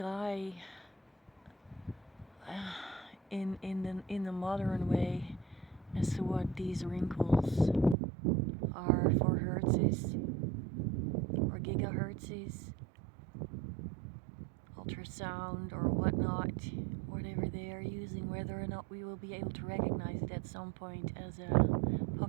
in the modern way as to what these wrinkles are for hertzes or gigahertzes, ultrasound or whatnot, whatever they are using, whether or not we will be able to recognize it at some point as a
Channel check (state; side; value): drops out; left; at 8.0 s